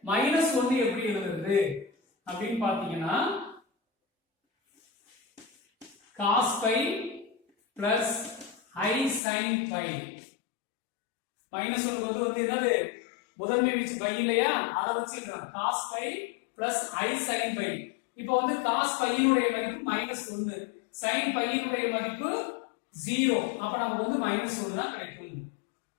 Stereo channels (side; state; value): right; drops out; at 9.2 s